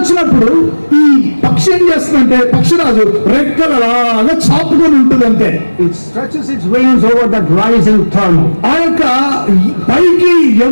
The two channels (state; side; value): inverted; both; correlation -1.00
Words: ఈ పక్షి ఏం చేస్తుందంటే పక్షిరాజు రెక్కలు అలాగా చాపుకొని ఉంటుంది అంతే. It stretches its wings over that rising thermal. ఆ యొక్క పైకి